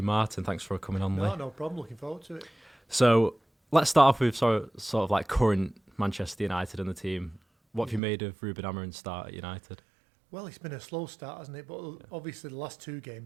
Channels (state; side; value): drops out; left; at 8.0 s